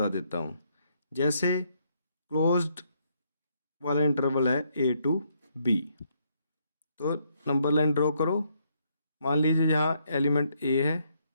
देता हूँ। जैसे क्लोज्ड वाला इंटरवल है a टू b, तो नंबर लाइन ड्रॉ करो। मान लीजिए यहाँ एलिमेंट a है,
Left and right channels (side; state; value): both; inverted; correlation -0.73